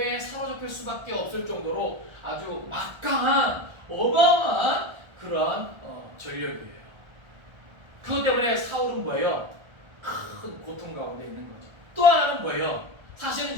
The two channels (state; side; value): late; left; 1.3 ms